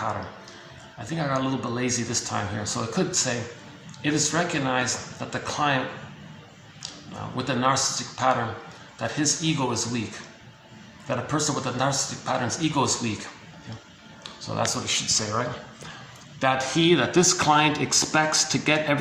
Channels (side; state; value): both; identical; correlation 1.00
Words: I think I got a little bit lazy this time here, so I could say, it is recognized that the client with the narcissistic pattern, that his ego is weak. that a person with a narcissistic pattern's ego is weak. Okay. So that's what it should say, right? That this client expects to get